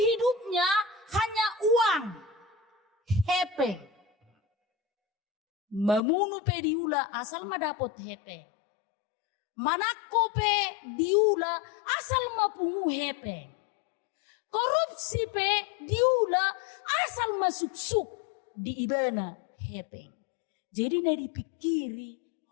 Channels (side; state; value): right; drops out; at 6.0 s